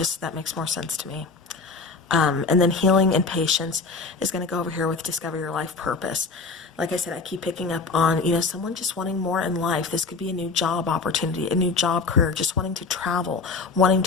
that makes more sense to me. And then healing and patience is going to go over here with discover your life purpose. Like I said, I keep picking up on, someone just wanting more in life. This could be a new job opportunity, a new job career, just wanting to travel, wanting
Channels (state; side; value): quieter; right; 4.3 dB